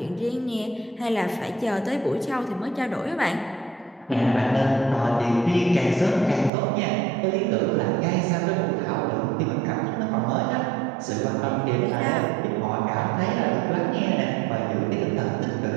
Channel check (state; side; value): drops out; left; at 6.5 s